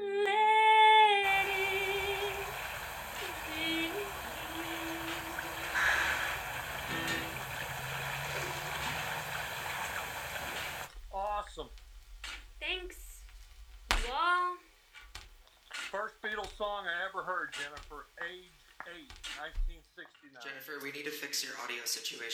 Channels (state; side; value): identical; both; correlation 1.00